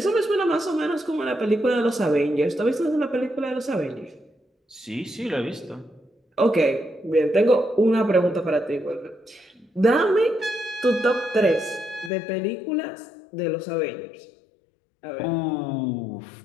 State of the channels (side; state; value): right; drops out; at 12.1 s